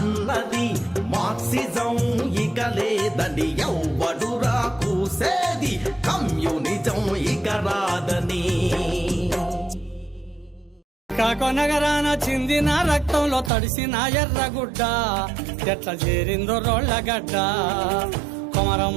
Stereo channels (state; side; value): drops out; left; at 13.5 s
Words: మార్క్సిజం ఇక లేదని ఎవ్వడురా కూసేది కమ్యూనిజం ఇక రాదని కాకొనగరాన చిందిన రక్తంలో తడిసిన ఎర్రగుడ్డ ఎట్లా చేరిందో రోళ్ళగడ్డ